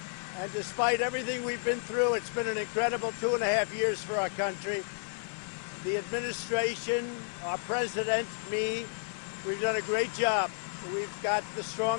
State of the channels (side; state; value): right; silent; digital silence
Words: and despite everything we've been through, it's been an incredible 2.5 years for our country. The administration, our president, me, we've done a great job. We've got the